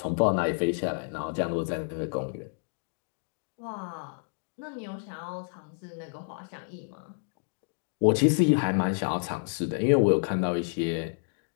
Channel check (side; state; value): right; silent; digital silence